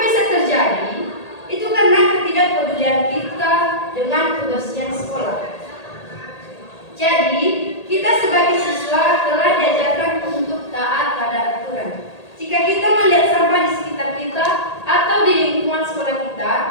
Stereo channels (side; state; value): right; late; 1.8 ms